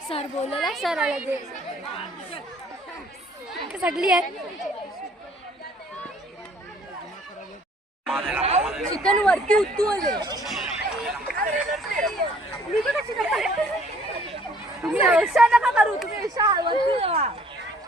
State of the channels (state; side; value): normal; both; correlation 0.58